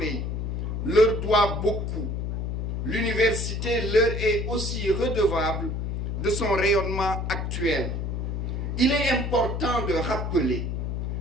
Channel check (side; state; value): left; noise; hum, 2 dB below the sound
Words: leur doit beaucoup. L'université leur est aussi redevable de son rayonnement actuel. Il est important de